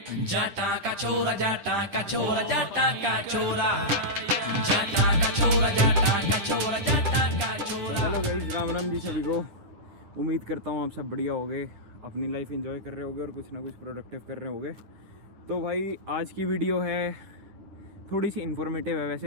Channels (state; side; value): late; left; 10 ms